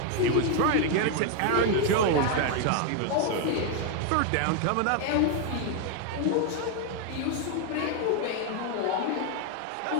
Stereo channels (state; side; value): different; both; correlation 0.01